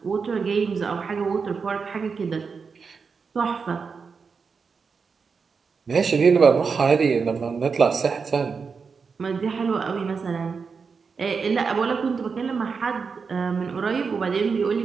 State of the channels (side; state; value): left; quieter; 5.3 dB